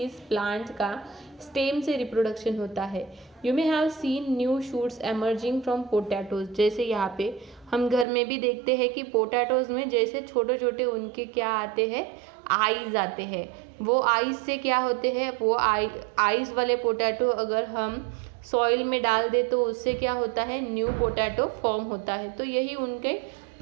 प्लांट का स्टेम से रिप्रोडक्शन होता है। You may have seen new shoots emerging from potatoes. जैसे यहाँ पे हम घर में भी देखते हैं कि पोटैटोज में जैसे छोटे छोटे उनके क्या आते हैं? आईज आते हैं। वो आईज से क्या होते हैं? वो आईज वाले पोटैटो अगर हम सॉइल में डाल दे तो उससे क्या होता है? न्यू पोटैटो फॉर्म होता है। तो यही उनके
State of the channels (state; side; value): drops out; left; at 8.1 s